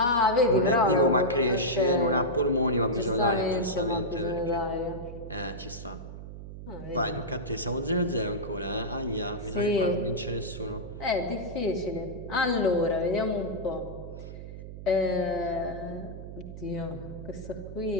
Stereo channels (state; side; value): noise; right; hum, 11 dB below the sound